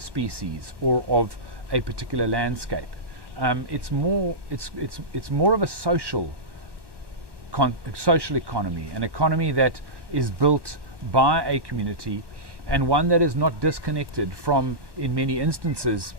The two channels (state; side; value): late; left; 1.1 ms